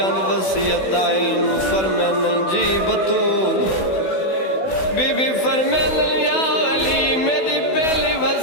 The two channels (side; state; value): right; late; 16 ms